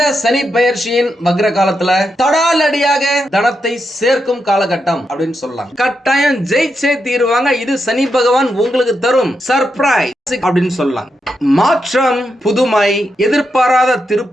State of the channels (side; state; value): both; normal; correlation 0.84